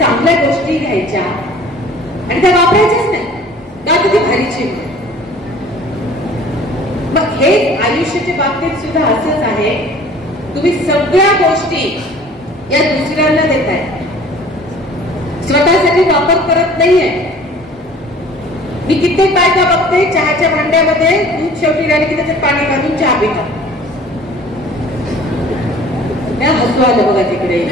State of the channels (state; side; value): normal; both; correlation 0.49